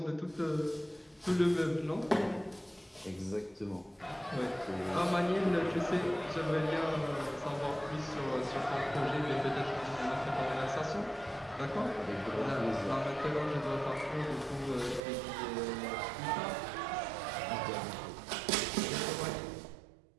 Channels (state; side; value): drops out; left; at 15.0 s